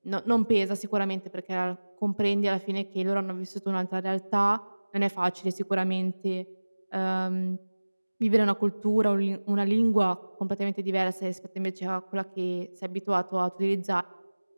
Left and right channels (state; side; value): inverted; both; correlation -1.00